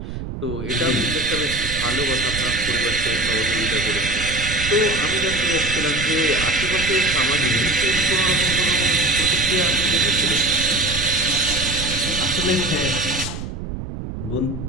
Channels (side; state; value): right; noise; rumble, 7 dB below the sound